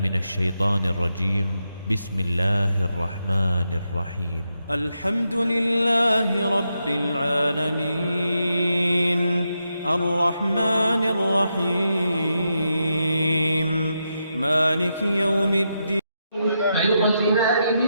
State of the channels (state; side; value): inverted; both; correlation -0.84